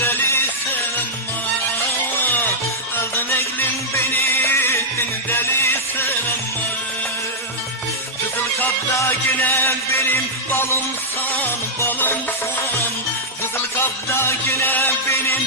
ama. Aldın egrin beni ettin delisen ama. Kızıl kapta yine benim balımsan, balımsan. Kızıl kapta yine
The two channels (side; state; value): both; normal; correlation -0.07